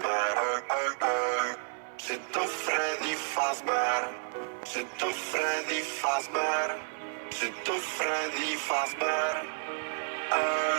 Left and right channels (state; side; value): silent; left; digital silence